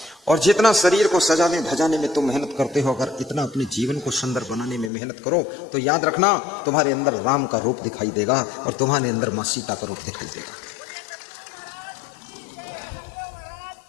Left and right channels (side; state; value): right; drops out; at 4.9 s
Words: और जितना शरीर को सजाने धजाने में तुम मेहनत करते हो, अगर इतना अपने जीवन को सुंदर बनाने में मेहनत करो तो याद रखना तुम्हारे अंदर राम का रूप दिखाई देगा और तुम्हारे अंदर माँ सीता का रूप दिखाई देगा।